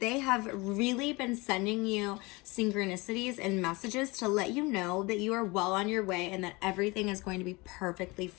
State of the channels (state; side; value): quieter; right; 24.6 dB